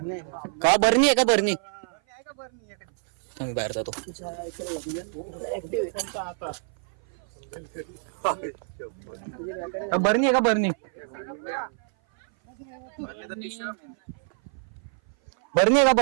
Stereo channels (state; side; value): silent; left; 56 dB below the other